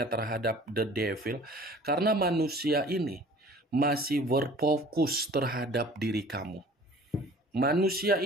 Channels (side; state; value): both; normal; correlation 0.48